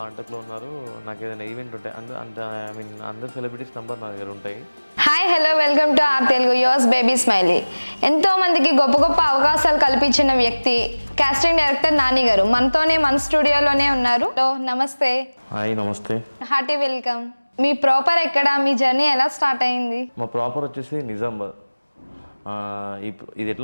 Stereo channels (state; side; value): inverted; both; correlation -1.00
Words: ఉన్నారు. నాకు ఏదైనా ఈవెంట్ ఉంటాయి అందరు సెలబ్రిటీస్ నెంబర్ నా దగ్గర ఉంటాయి. Hi, hello, welcome to our Telugu yours baby smiley. ఎంతో మందికి గొప్ప గొప్ప అవకాశాలు కల్పించిన వ్యక్తి కాస్టింగ్ డైరెక్టర్ నాని గారు మనతోనే మన స్టూడియోలోనే ఉన్నారు. నమస్తే. హాయ్ నమస్తే. Hearty welcome. మీ ప్రాపర్ ఎక్కడ? మీ జర్నీ ఎలా స్టార్ట్ అయింది? మా ప్రాపర్ వచ్చేసి నిజామాబాద్. ఇది